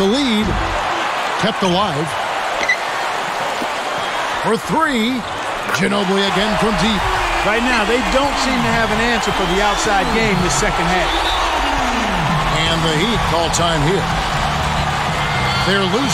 lead. Kept alive. For 3. Ginobili again from deep. Right now, they don't seem to have an answer for the outside game this second half. And the Heat call time here. They're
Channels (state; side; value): identical; both; correlation 1.00